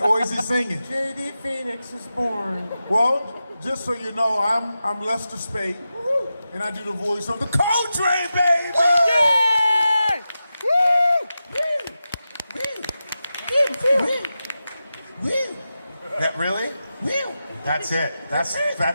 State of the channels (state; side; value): inverted; both; correlation -0.91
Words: Or is he singing? JD Phoenix was born. Well, just so you know, I'm Lester Spade, and I do the voice of the Coltrane, baby! Yeah! Woo! That really? Woo! That's it.